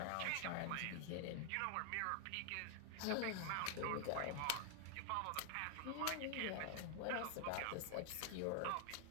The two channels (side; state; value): both; different; correlation 0.00